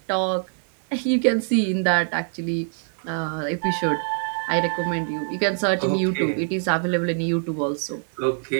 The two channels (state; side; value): silent; left; 55 dB below the other